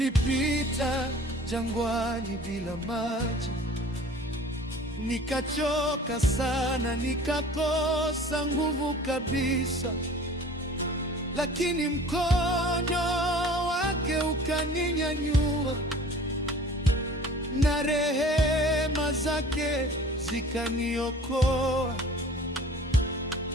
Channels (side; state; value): both; normal; correlation 0.45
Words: jangwani bila maji, nikachoka sana, nikakosa nguvu kabisa, lakini mkono wake ukaninyanyua, na rehema zake zikaniokoa.